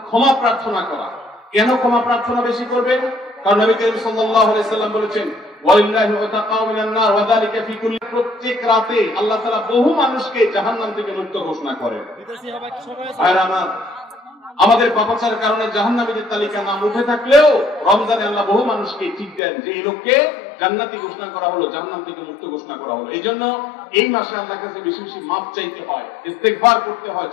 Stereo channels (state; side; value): drops out; right; at 19.4 s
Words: ক্ষমা প্রার্থনা করা। কেন ক্ষমা প্রার্থনা বেশি করবেন? কারণ নবী করিম সাল্লাল্লাহু আলাইহি সাল্লাম বলেছেন, ওয়ালিল্লাহি ওয়াতাকাউ মিনান নার ওয়া যালিকা ফি কুল্লি, প্রত্যেক রাতে আল্লাহ তাআলা বহু মানুষকে জাহান্নাম থেকে মুক্ত ঘোষণা করেন। আর আমাদের পাপাচারের কারণে জাহান্নামীদের তালিকা নাম উঠে থাকলেও রমজানে আল্লাহ বহু মানুষকে ঠিক দেন যে এই লোককে জান্নাতি ঘোষণা করা হলো, জাহান্নাম থেকে মুক্ত ঘোষণা করা হলো। এই জন্য এই মাসে আল্লাহর কাছে বেশি বেশি মাফ চাইতে হয়, ইস্তেগফার করতে হয়,